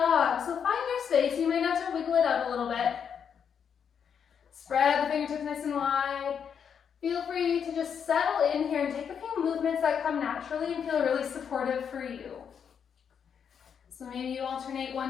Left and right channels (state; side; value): quieter; right; 7.4 dB